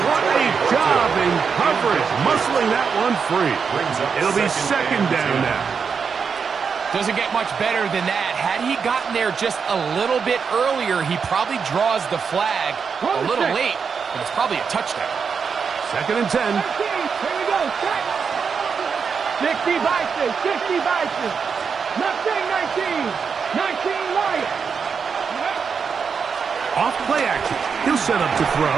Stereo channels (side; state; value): left; quieter; 6.0 dB